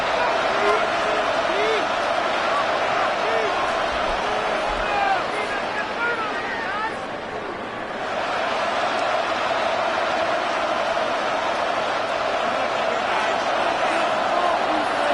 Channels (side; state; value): both; identical; correlation 1.00